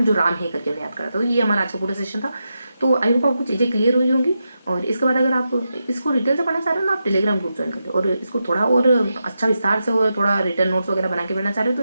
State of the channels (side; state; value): both; inverted; correlation -0.87